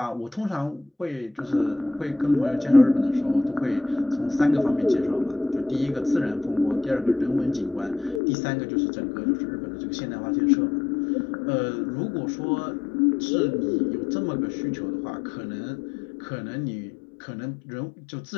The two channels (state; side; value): drops out; right; at 8.2 s